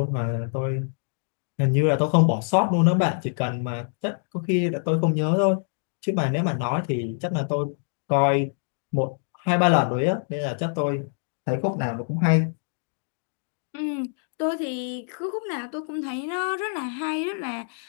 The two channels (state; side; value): silent; right; digital silence